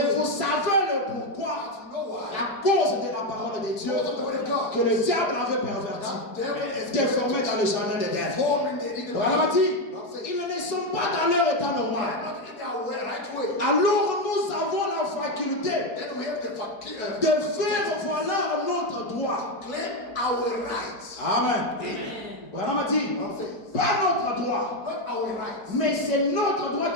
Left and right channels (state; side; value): late; right; 5.0 ms